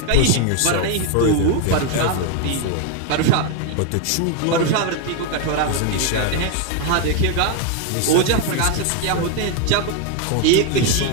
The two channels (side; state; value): both; different; correlation 0.01